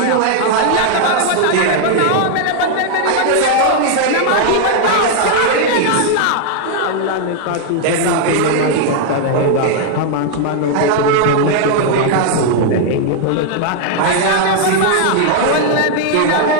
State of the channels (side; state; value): both; different; correlation 0.00